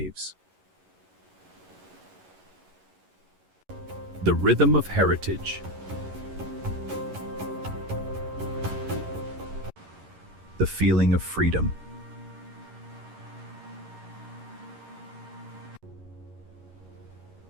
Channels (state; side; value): late; left; 11 ms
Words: The rhythm of heritage. The feeling of freedom.